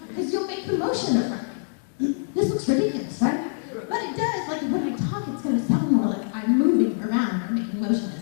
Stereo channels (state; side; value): silent; right; digital silence